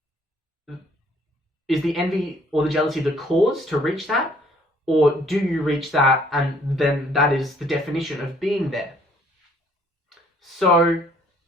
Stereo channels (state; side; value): normal; both; correlation 0.61